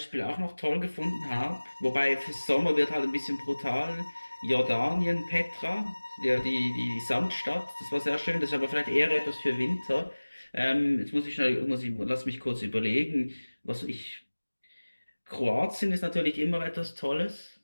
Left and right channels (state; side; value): inverted; both; correlation -1.00